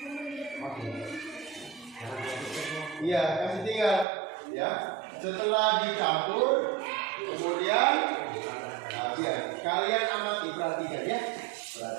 Iya, kasih tinggal, ya. Setelah dicampur, kemudian ya, kalian amati, perhatikan ya,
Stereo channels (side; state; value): left; drops out; at 4.0 s